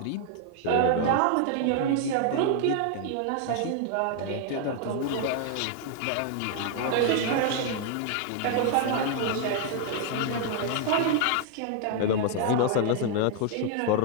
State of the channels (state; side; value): different; both; correlation 0.00